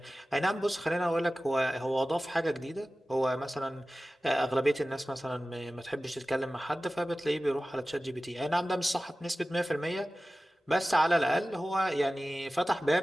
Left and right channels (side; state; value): both; normal; correlation 0.96